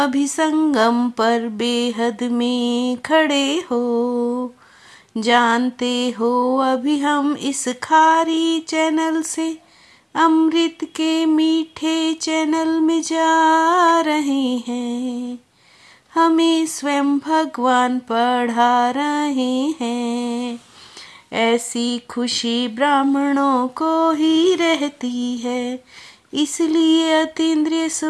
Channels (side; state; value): both; identical; correlation 1.00